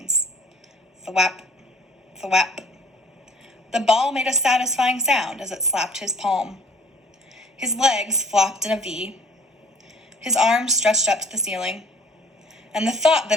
Thwap, thwap. The ball made a satisfying sound as it slapped his palm. His legs flopped in a V. His arms stretched up to the ceiling. And the thought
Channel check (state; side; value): normal; both; correlation 0.53